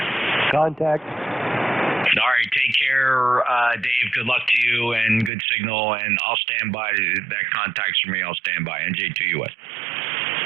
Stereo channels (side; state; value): left; drops out; at 5.3 s